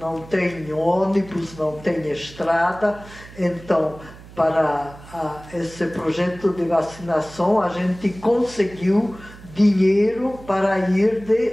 tem ônibus, não tem estrada. Então, para esse projeto de vacinação, a gente conseguiu dinheiro para ir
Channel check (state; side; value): noise; right; hum, 19 dB below the sound